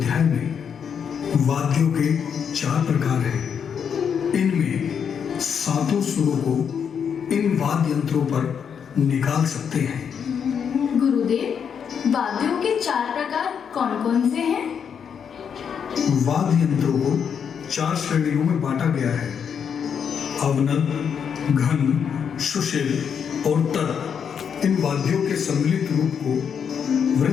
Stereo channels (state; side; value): quieter; right; 7.3 dB